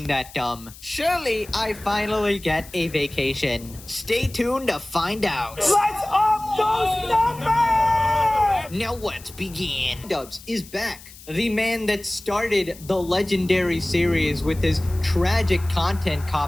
that dumb. Surely I finally get a vacation. Stay tuned to find out. Let's up those numbers! Now let's begin. Dubs is back. The man that started the legendary series with his tragic content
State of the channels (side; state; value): left; noise; hiss, 19 dB below the sound